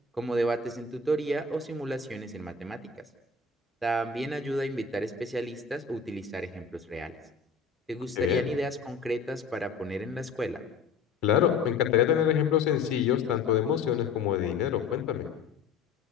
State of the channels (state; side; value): quieter; right; 5.0 dB